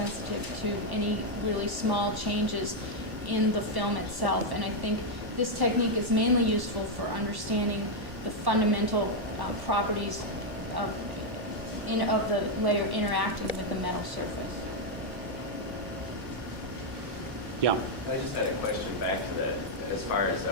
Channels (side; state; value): left; late; 1.1 ms